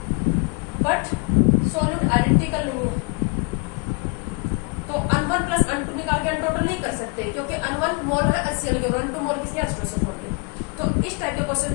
बट सोल्यूट आइडेंटिकल नहीं है, तो N1 प्लस N2 निकाल के अनटोटल नहीं कर सकते, क्योंकि N1 मोल है HCl के और N2 मोल किसके? H2SO4 के। तो इस टाइप के क्वेश्चन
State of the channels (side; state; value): right; quieter; 32.2 dB